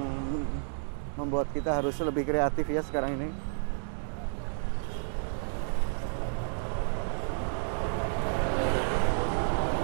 membuat kita harus lebih kreatif ya sekarang ini.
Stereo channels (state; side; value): silent; left; digital silence